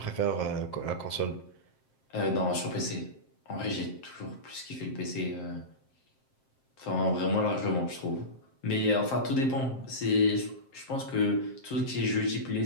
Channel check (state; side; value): late; right; 7.6 ms